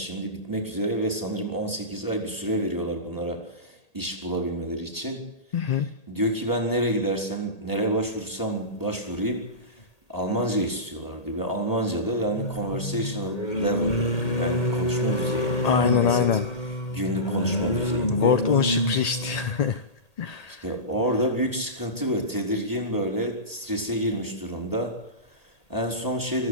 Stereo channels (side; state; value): right; late; 1.8 ms